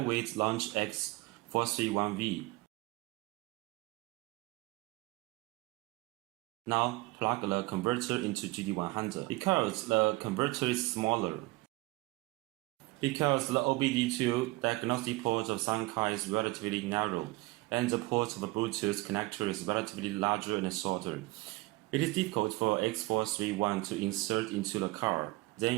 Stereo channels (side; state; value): left; quieter; 21.9 dB